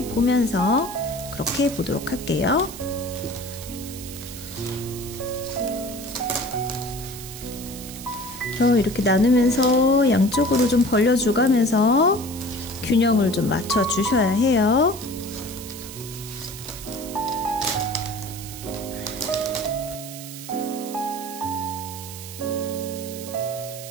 그렇게 해보도록 할게요. 이렇게 나누면서 양쪽으로 좀 벌려주가면서 균형을 좀 맞춰 주셔야 해요.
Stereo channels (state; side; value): noise; right; hiss, 12 dB below the sound